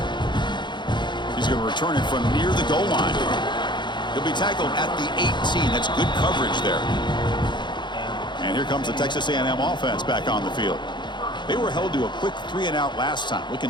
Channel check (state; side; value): late; right; 0.22 ms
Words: He's going to return it from near the goal line. He'll be tackled at the 18. That's good coverage there. And here comes the Texas A&M offense back on the field. They were held to a quick 3-and-out last time, looking